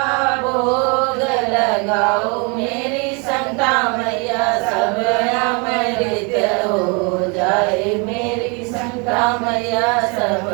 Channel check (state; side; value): quieter; left; 32.2 dB